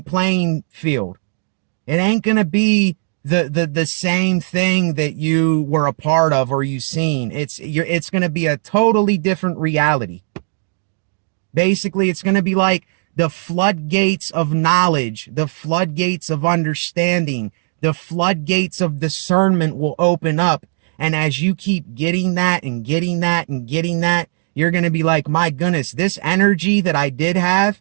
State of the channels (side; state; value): left; silent; digital silence